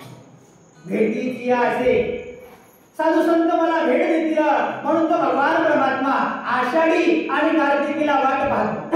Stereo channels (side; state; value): both; identical; correlation 1.00